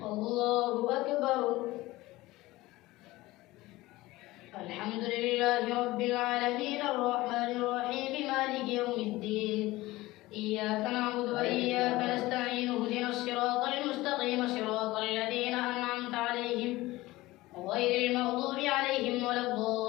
الله أكبر. الحمد لله رب العالمين الرحمن الرحيم مالك يوم الدين. إياك نعبد وإياك نستعين اهدنا الصراط المستقيم صراط الذين أنعمت عليهم غير المغضوب عليهم ولا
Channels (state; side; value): quieter; right; 18.9 dB